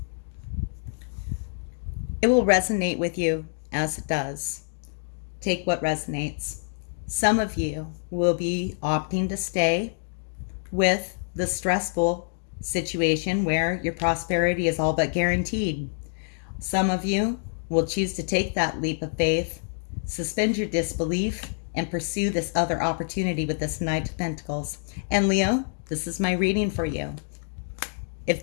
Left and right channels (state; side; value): silent; right; digital silence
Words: It will resonate with you as it does. Take what resonates. Some of you will be opting to stay with the stressful situation where your prosperity is all but guaranteed. Some of you will choose to take that leap of faith, suspend your disbelief, and pursue this other opportunity with this Knight of Pentacles. And Leo, this is my reading for you. If